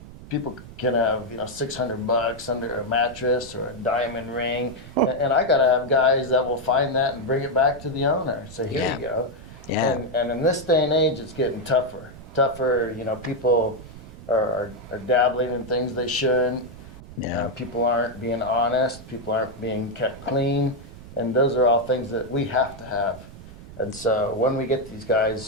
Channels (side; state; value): right; noise; rumble, 16 dB below the sound